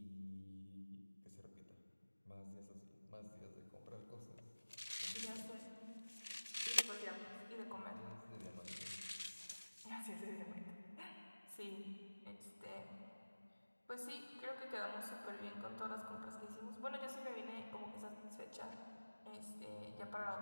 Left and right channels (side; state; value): both; inverted; correlation -1.00